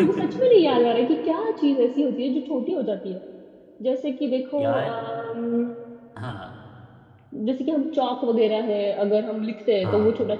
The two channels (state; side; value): identical; both; correlation 1.00